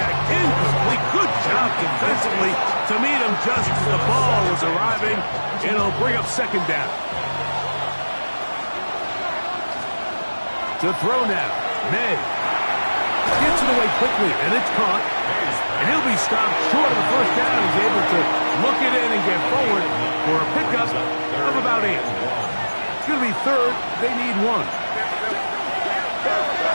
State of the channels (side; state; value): both; inverted; correlation -1.00